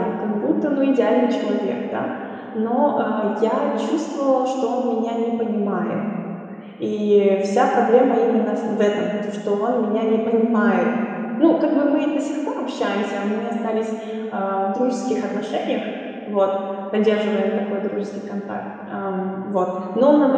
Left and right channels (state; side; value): identical; both; correlation 1.00